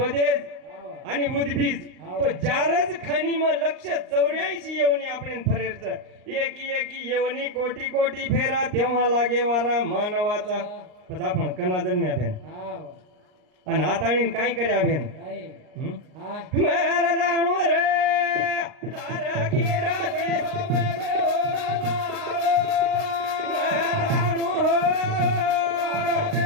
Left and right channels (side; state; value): left; late; 39 ms